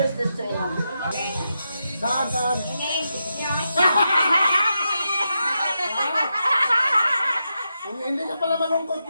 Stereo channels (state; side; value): inverted; both; correlation -0.86